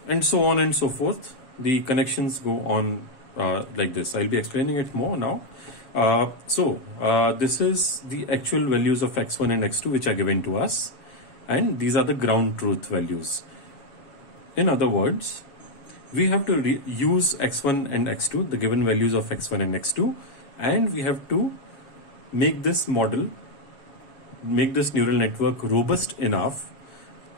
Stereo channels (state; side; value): late; right; 7.2 ms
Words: and so on and so forth. The connections go on like this. I'll be explaining it more now. This is the actual values of X1 and X2 which are given to us, and these are the ground truth values. In other words, we have to use X1 and X2, the given values of X1 and X2, and we have to make this model, make this neural network robust enough